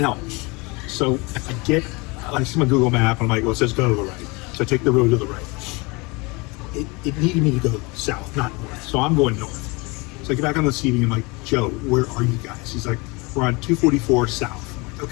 So I see my Google map, and I'm like, well, it says go to the right. So I take the road to the right. It needed me to go south, not north, so I'm going north. So I get back on the CB, I'm like, Joe, where are you guys? He's like, we're on 244 south. I'm like,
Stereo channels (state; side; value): quieter; right; 26.7 dB